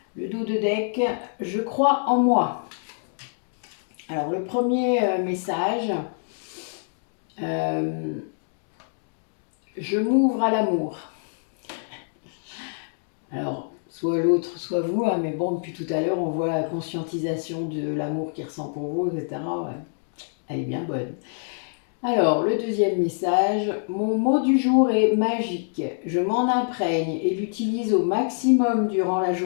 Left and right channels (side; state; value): right; silent; digital silence